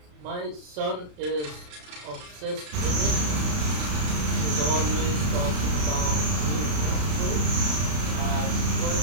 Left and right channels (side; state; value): left; late; 33 ms